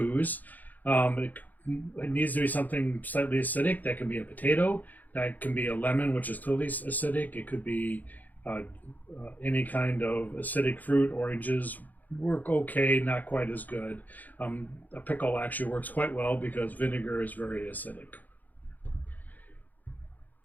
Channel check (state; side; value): late; right; 0.082 ms